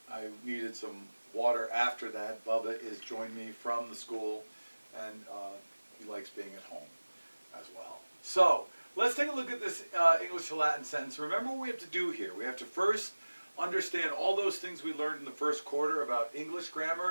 I needed some water after that. Bubba is joined me from the school and he likes being at home as well. So, let's take a look at this English to Latin sentence. Remember what we have to do here. We have to first understand all those things we learned in the first quarter about English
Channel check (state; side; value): inverted; both; correlation -1.00